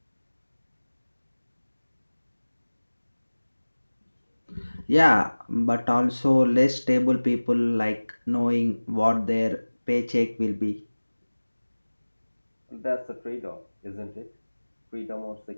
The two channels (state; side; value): inverted; both; correlation -1.00